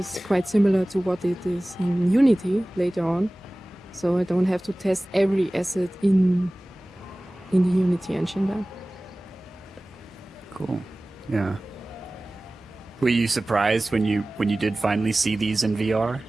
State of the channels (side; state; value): both; normal; correlation 0.98